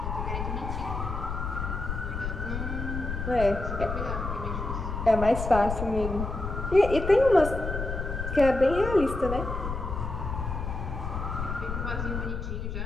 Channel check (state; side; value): noise; left; rumble, 4 dB below the sound